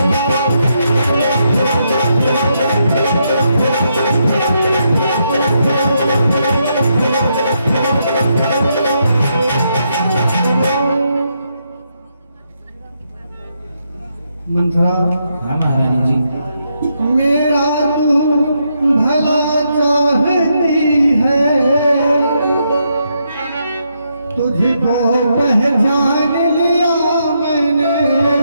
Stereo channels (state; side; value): inverted; both; correlation -0.79